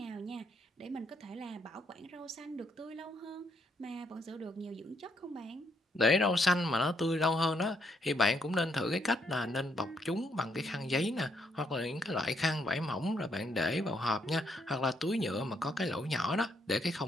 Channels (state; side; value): normal; both; correlation 0.74